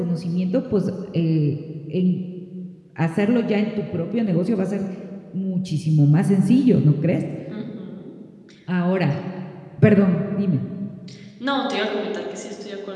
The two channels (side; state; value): both; identical; correlation 1.00